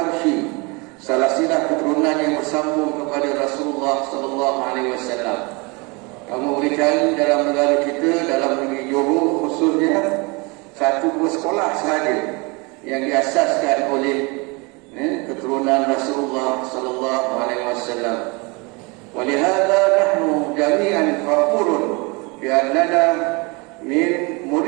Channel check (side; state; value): left; quieter; 28.3 dB